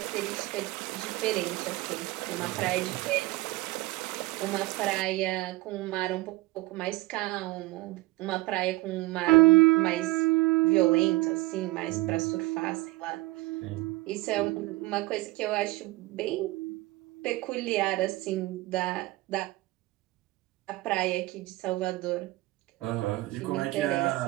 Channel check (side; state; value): left; quieter; 19.8 dB